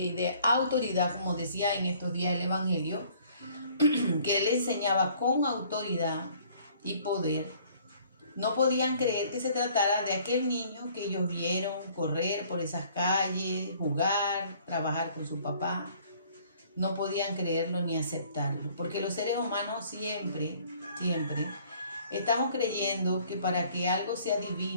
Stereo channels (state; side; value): inverted; both; correlation -0.57